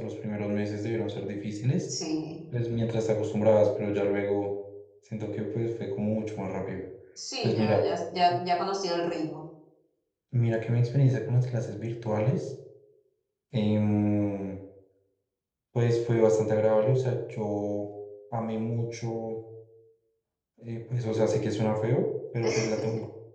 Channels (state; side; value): identical; both; correlation 1.00